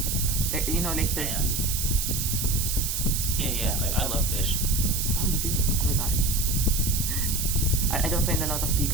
You know, like Yeah. turkey. Yeah. Like I love fish. Oh, you do? Oh my god. I don't find a lot of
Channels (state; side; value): noise; right; hiss, 1 dB below the sound